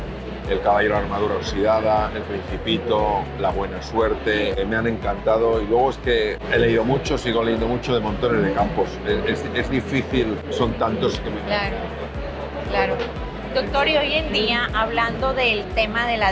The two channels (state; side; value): identical; both; correlation 1.00